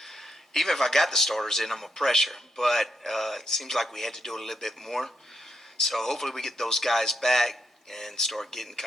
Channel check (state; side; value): normal; both; correlation 0.81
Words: Even if I got the starters in, I'm a pressure. But it seems like we had to do a little bit more. So hopefully we get those guys back and start getting